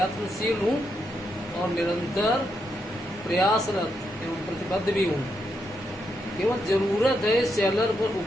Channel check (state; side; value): normal; both; correlation 0.81